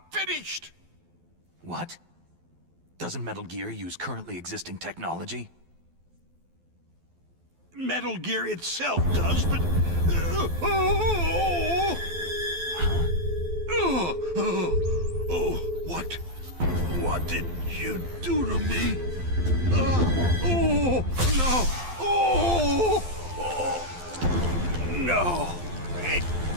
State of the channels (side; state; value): left; late; 12 ms